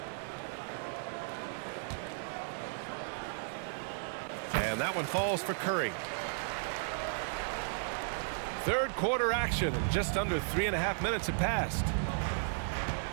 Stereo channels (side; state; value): left; silent; digital silence